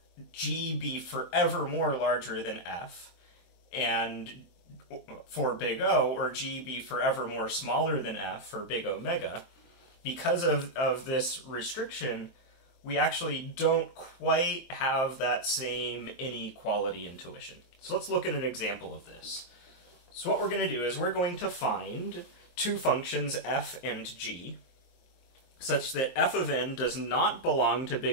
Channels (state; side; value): late; right; 23 ms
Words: g be forevermore larger than f, and for big O, or g be forevermore smaller than f for big omega, because of this restriction, we actually don't quite have that same inequality intuition. So let's look at an example of this. So what we're going to do is we're going to find two functions f and g, such that f of n does not belong to